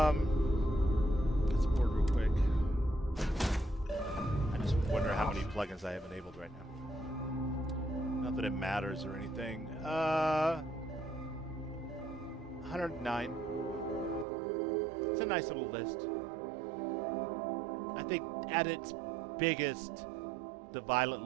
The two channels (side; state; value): left; drops out; at 14.2 s